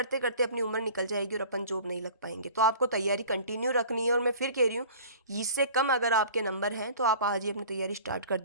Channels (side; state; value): both; inverted; correlation -0.44